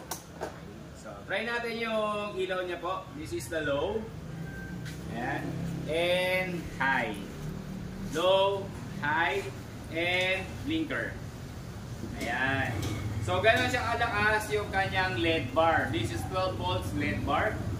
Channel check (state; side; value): identical; both; correlation 1.00